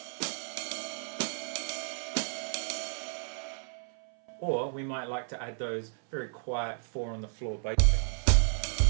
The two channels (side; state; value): left; silent; 56 dB below the other